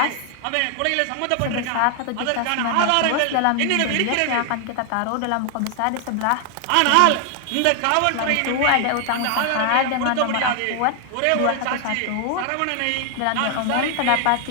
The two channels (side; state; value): both; different; correlation 0.00